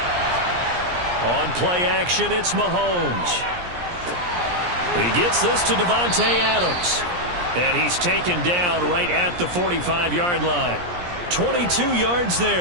On play action, it's Mahomes. He gets this to Davante Adams. And he's taken down right at the 45-yard line. 22 yards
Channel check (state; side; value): late; left; 17 ms